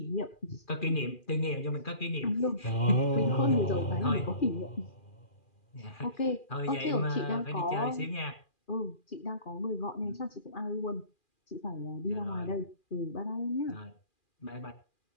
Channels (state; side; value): late; right; 2.4 ms